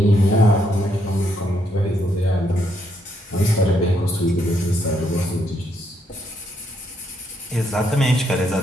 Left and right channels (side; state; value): both; normal; correlation 0.75